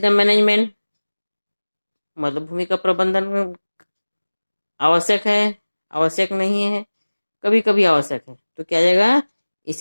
द मैनेजमेंट मतलब भूमि का प्रबंधन आवश्यक है, आवश्यक नहीं है, कभी कभी आवश्यक है। तो क्या जाएगा?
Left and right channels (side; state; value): both; inverted; correlation -1.00